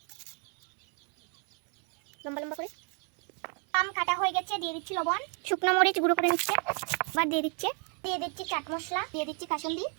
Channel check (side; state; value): left; quieter; 39.4 dB